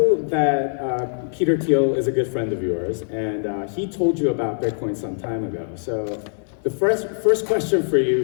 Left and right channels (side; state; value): right; silent; digital silence